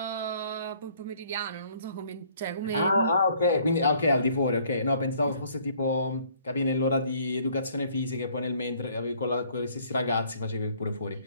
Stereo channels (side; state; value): both; inverted; correlation -0.60